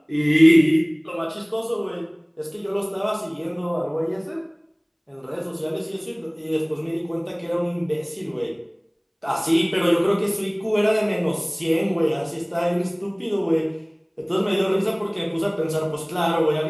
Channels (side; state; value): both; identical; correlation 1.00